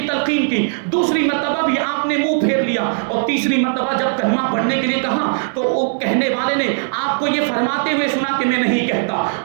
تلقین کی، دوسری مرتبہ بھی آپ نے منہ پھیر لیا، اور تیسری مرتبہ جب کلمہ پڑھنے کے لیے کہا تو وہ کہنے والے نے آپ کو یہ فرماتے ہوئے سنا کہ میں نہیں کہتا۔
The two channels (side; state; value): left; silent; digital silence